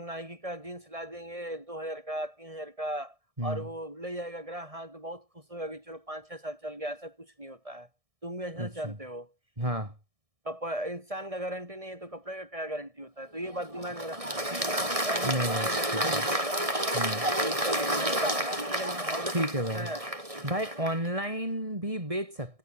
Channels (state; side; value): late; left; 1.6 ms